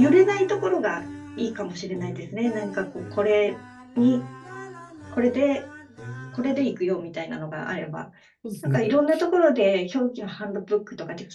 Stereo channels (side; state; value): both; identical; correlation 1.00